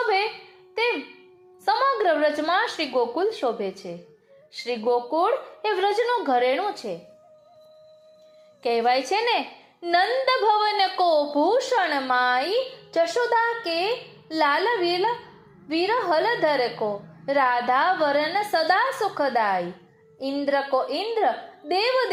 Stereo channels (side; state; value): both; identical; correlation 1.00